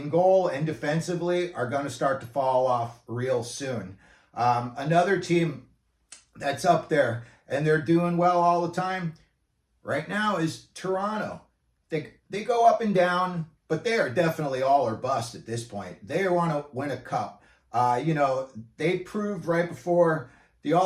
goal and defensively are going to start to fall off real soon. Another team that's up there and they're doing well all the time right now is Toronto. They go up and down, but they are definitely all or bust at this point. They want to win a cup. They proved right before the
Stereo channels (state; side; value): identical; both; correlation 1.00